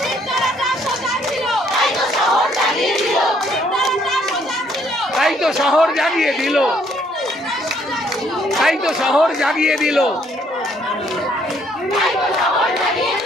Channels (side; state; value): both; normal; correlation 0.66